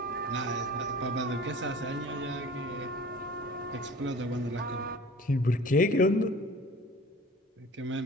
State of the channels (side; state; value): both; normal; correlation 0.44